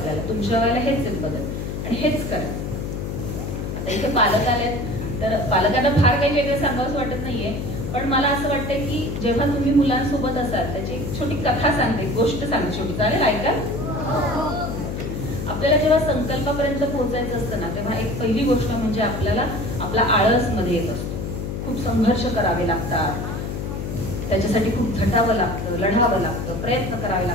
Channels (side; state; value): left; noise; hum, 4 dB below the sound